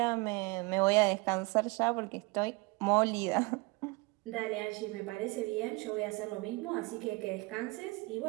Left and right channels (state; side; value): quieter; left; 25.8 dB